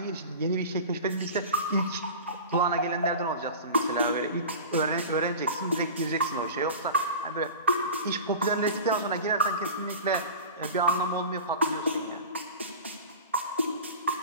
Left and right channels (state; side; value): inverted; both; correlation -0.35